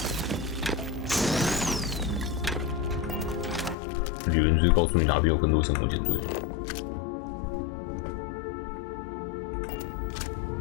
理论就是告诉你哪边有更多生活舰队。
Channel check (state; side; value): drops out; right; at 3.8 s